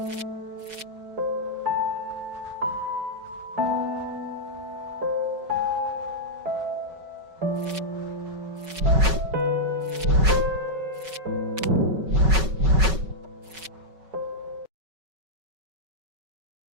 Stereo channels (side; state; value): left; late; 5.3 ms